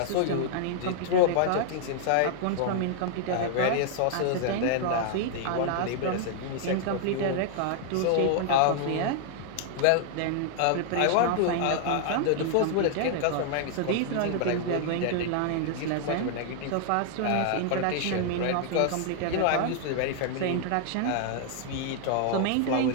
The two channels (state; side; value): different; both; correlation -0.01